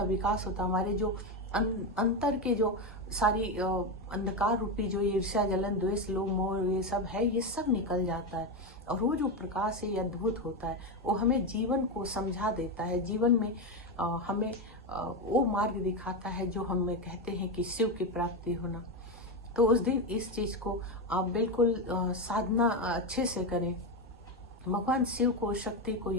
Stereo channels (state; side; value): normal; both; correlation 0.12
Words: विकास होता है। हमारे जो अंतर के जो सारी अंधकार रूपी जो ईर्ष्या, जलन, द्वेष, लोभ, मोह, ये सब है, ये सब निकल जाता है। और वो जो प्रकाश है, ये अद्भुत होता है। वो हमें जीवन को समझा देता है, जीवन में हमें वो मार्ग दिखाता है जो हमें कहते हैं कि शिव की प्राप्ति होना। तो उस दिन इस चीज को आप बिल्कुल साधना अच्छे से करें, भगवान शिव को, शक्ति को